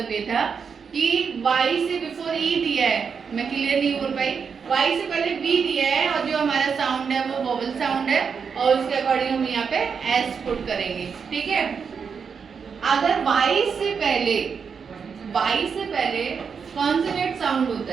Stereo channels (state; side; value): quieter; left; 6.2 dB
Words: ये था कि वाई से बिफोर ई दिया है, मैं क्लियर नहीं बोल पाई, वाई से पहले बी दिया है और जो हमारा साउंड है वो वोवल साउंड है और उसके अकॉर्डिंग हम यहाँ पे एस पुट करेंगे। ठीक है, अगर वाई से पहले कॉन्सोनेंट साउंड होता